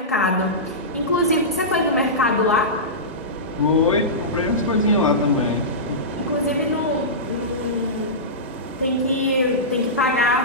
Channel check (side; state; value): both; normal; correlation -0.17